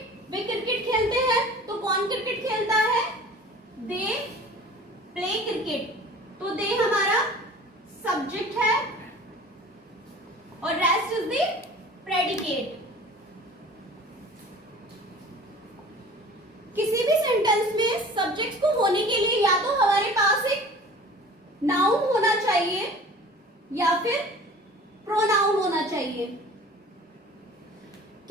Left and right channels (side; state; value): both; normal; correlation 0.44